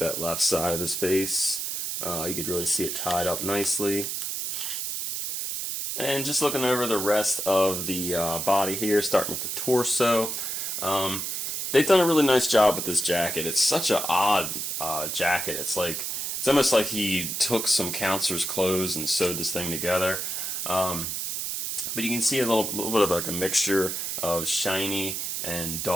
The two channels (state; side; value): noise; right; hiss, 3 dB below the sound